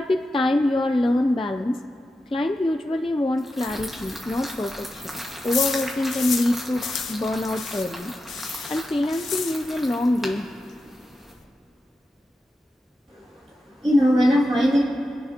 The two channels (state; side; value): normal; both; correlation 0.90